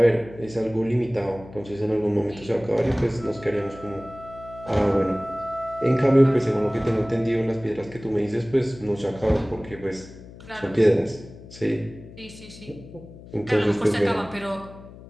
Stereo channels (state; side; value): noise; left; hum, 18 dB below the sound